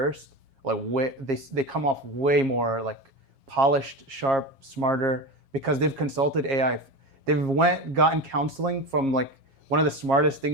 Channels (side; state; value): left; late; 7.4 ms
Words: like they come off way more like polished, sharp, smarter because they've consulted AI. They've gotten counseling from like one of the smartest